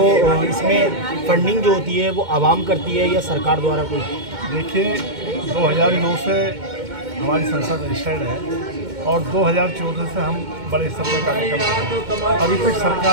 इसमें फंडिंग जो होती है वो आवाम करती है या सरकार द्वारा कोई? देखिए, 2009 से हमारी संस्था रजिस्टर्ड है और 2014 से हम बड़े स्तर पर कार्य कर रहे हैं। अभी तक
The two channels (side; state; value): left; late; 2.2 ms